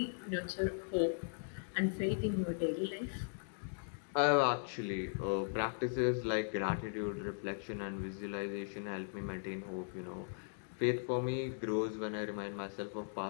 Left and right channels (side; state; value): right; silent; digital silence